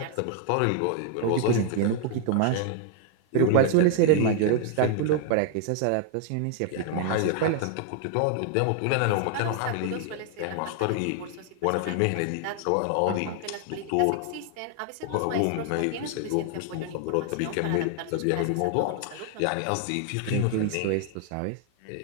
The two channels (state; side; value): different; both; correlation 0.00